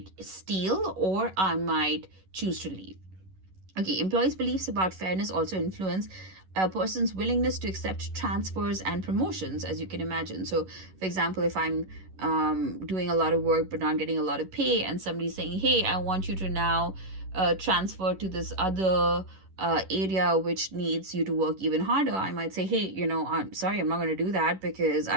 steal or I might choose to leave. Okay, employees' beliefs about fairness also influence a person's willingness to accept transfers and promotions, as you can imagine. So, for example, if I'm doing a lot of work but not getting a lot of pay, and somebody's saying, hey, I want you to now transfer to this other area which needs you to work even harder, I might say, hey, I'm sorry, I'm not going to do that because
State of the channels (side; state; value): left; late; 11 ms